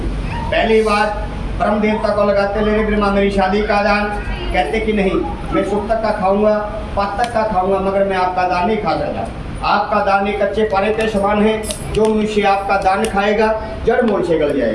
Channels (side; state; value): both; identical; correlation 1.00